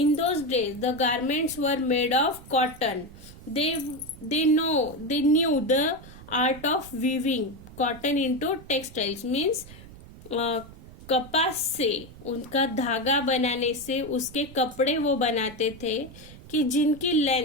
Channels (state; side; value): noise; right; rumble, 18 dB below the sound